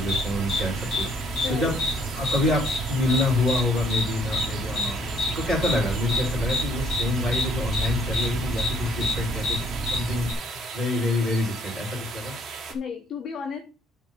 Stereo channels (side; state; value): both; normal; correlation 0.64